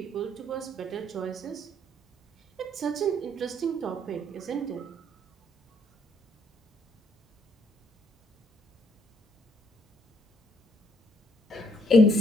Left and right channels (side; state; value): both; normal; correlation 0.68